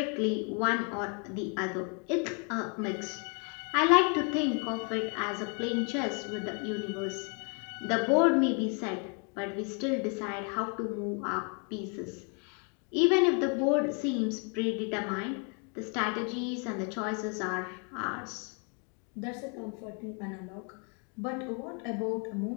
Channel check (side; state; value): right; quieter; 37.7 dB